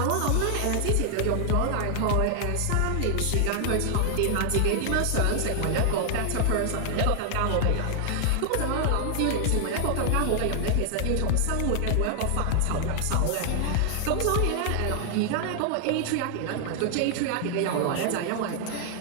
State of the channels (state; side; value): different; both; correlation 0.00